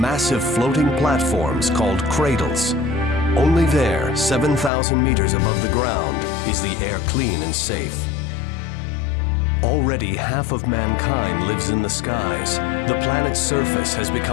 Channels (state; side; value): drops out; right; at 4.7 s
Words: floating platforms called Cradles. Only there, 7,000 meters above the ground, is the air clean and safe. Already half of mankind lives in the skies. The planet's surface has